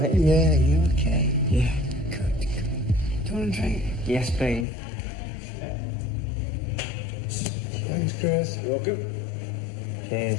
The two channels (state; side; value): drops out; right; at 4.7 s